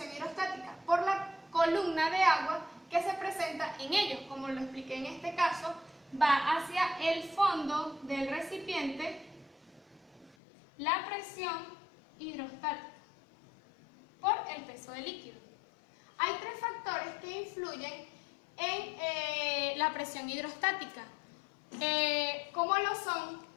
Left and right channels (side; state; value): right; drops out; at 10.4 s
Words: hidrostática por la columna de agua que se presenta en ellos. Como lo expliqué en este caso, va hacia el fondo del recipiente la presión hidrostática por el peso del líquido. Hay tres factores que influyen en la presión hidrostática, como lo son